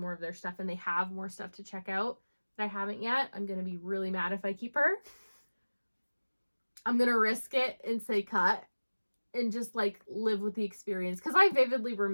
of their stuff and they have more stuff to check out that I haven't yet, I'm going to be really mad if I keep her. I'm going to risk it and say cut and just, like, live with the experience. Because I vividly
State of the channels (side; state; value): both; inverted; correlation -1.00